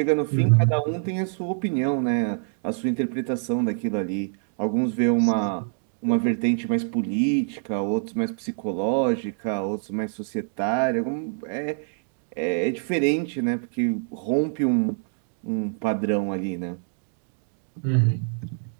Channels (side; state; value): left; silent; 61 dB below the other